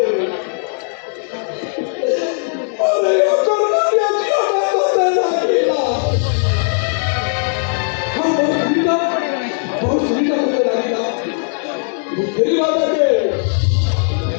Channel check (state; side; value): silent; right; digital silence